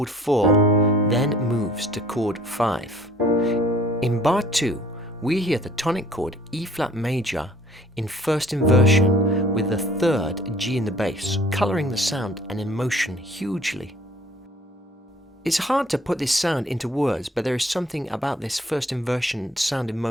4, then moves to chord 5. In bar 2, we hear the tonic chord E-flat major in first inversion with the 3rd G in the bass, colouring the sound and emotion hugely. It's hard to put this sound into words, but there is something about this first inversion sound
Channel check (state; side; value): normal; both; correlation 0.54